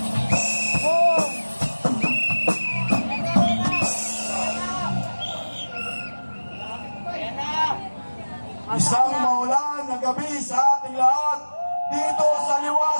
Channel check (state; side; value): inverted; both; correlation -1.00